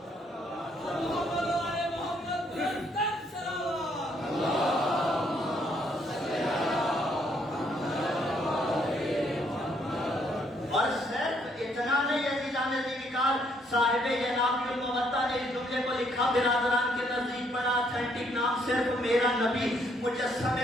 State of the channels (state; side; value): normal; both; correlation 0.70